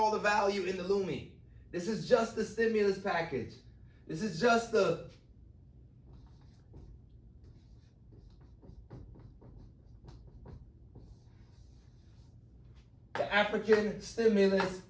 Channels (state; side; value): identical; both; correlation 1.00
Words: the value in the LUMI. This is just the stimulus package. This is just the African stimulus,